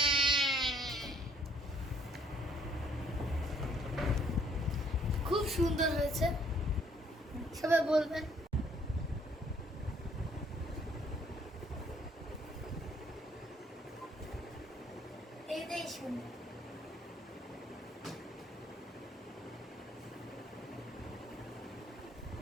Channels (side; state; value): both; normal; correlation 0.64